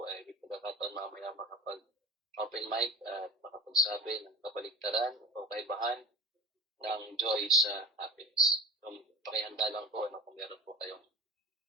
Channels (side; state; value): both; normal; correlation 0.33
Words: ay may pagkakataon mamaya makapag-open mic at makapagsabi ng kabaligtaran o kaibahan ng joy sa happiness. So pakihanda lang po kung meron po kayong